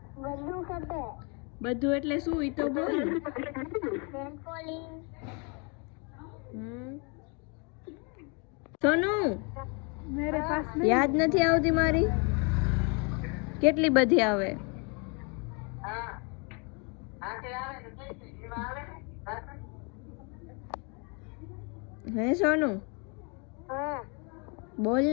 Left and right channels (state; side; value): quieter; right; 33.8 dB